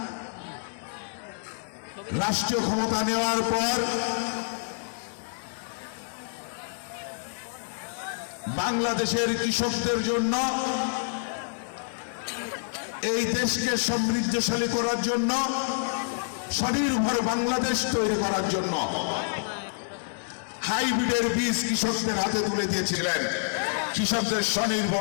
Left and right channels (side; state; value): right; silent; 59 dB below the other